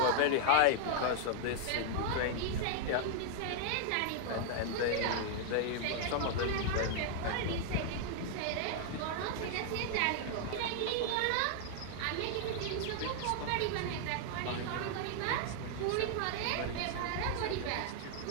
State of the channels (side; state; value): both; different; correlation 0.00